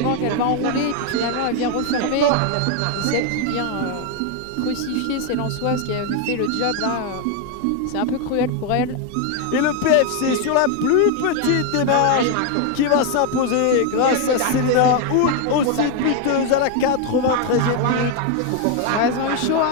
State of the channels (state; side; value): different; both; correlation 0.01